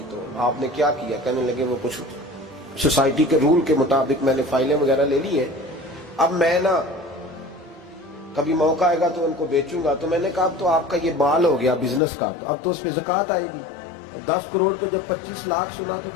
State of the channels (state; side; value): drops out; right; at 12.0 s